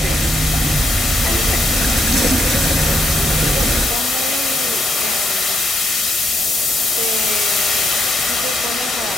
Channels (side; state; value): both; normal; correlation 0.77